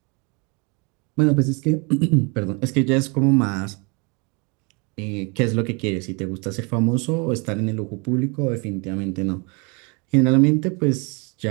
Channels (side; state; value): left; quieter; 31.7 dB